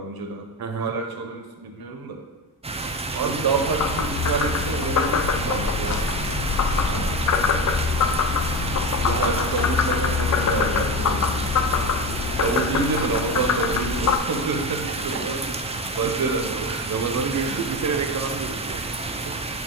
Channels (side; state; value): both; normal; correlation 0.22